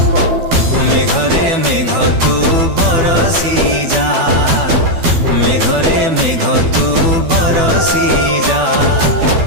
मेघरे मेघ तू बरसी जा मेघरे मेघ तू बरसी जा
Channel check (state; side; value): late; left; 12 ms